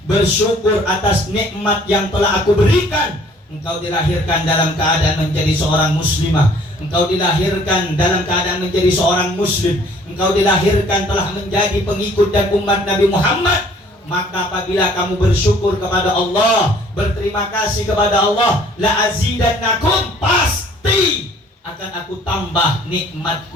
bersyukur atas nikmat yang telah aku berikan, engkau dilahirkan dalam keadaan menjadi seorang muslimah, engkau dilahirkan dalam keadaan menjadi seorang muslim, engkau dilahirkan telah menjadi pengikut dan umat Nabi Muhammad, maka apabila kamu bersyukur kepada Allah, berterima kasih kepada Allah, la azidannakum, pasti akan aku tambah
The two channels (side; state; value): both; normal; correlation 0.56